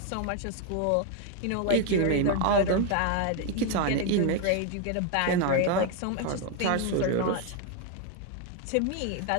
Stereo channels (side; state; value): both; different; correlation 0.01